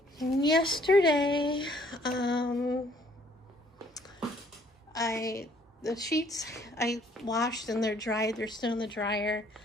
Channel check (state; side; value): normal; both; correlation 0.62